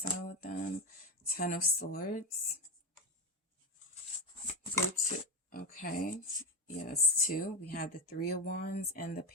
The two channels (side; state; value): both; normal; correlation 0.14